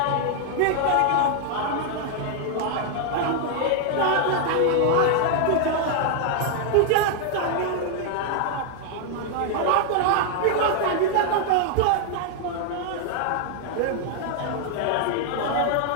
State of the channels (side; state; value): both; different; correlation 0.00